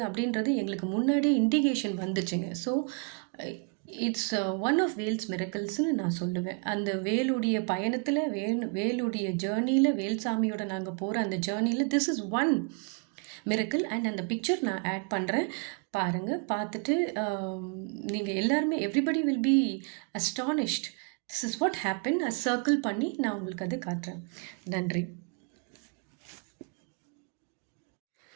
அப்படின்றது எங்களுக்கு முன்னாடியே இண்டிகேஷன் வந்துச்சுங்க. So it's one of Vel's மிரக்கல்ஸ்னு நான் சொல்லுவேன். அந்த வேலுடைய பயணத்தில், வேலுடைய ஜேர்னியில், வேல்சாமியோட நாங்கள் போகிற அந்த ஜேர்னியில் this is one miracle. And அந்த பிக்சர் நான் ஆட் பண்ணுறேன், பாருங்கள். பார்த்துட்டு நீங்கள் எல்லாருமே everybody will be astonished. This is what happen. Circle பண்ணி நான் உங்களுக்கு அது காட்டுறேன். நன்றி.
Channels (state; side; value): quieter; left; 34.7 dB